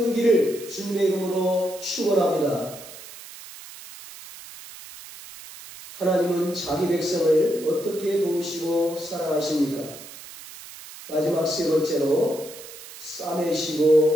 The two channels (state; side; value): noise; right; hiss, 16 dB below the sound